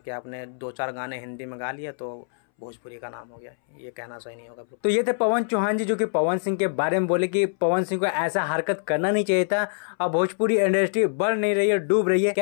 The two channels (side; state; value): right; silent; 62 dB below the other